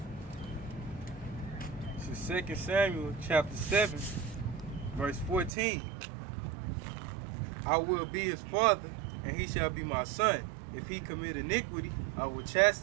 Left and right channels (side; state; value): left; drops out; at 5.5 s